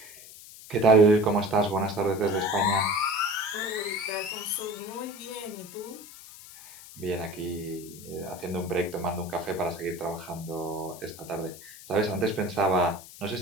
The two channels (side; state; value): left; noise; hiss, 17 dB below the sound